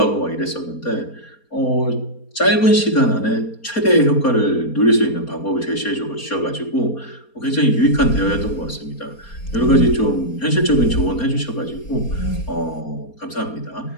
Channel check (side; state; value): right; late; 4.3 ms